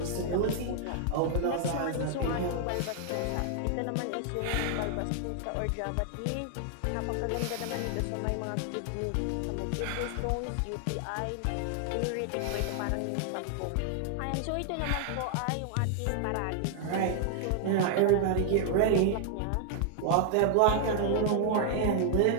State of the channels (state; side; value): different; both; correlation 0.00